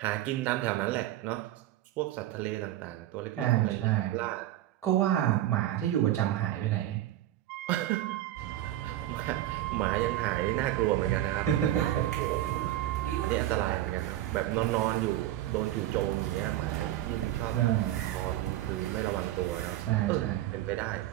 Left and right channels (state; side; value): quieter; left; 13.8 dB